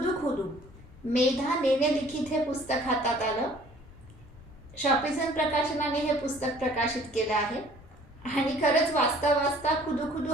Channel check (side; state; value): both; normal; correlation 0.54